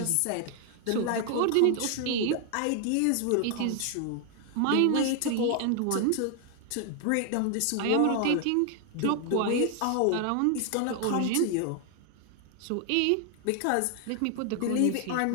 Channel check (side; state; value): both; different; correlation 0.00